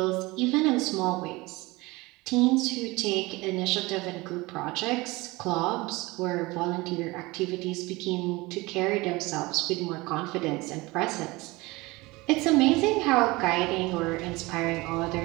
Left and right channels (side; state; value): left; quieter; 22.3 dB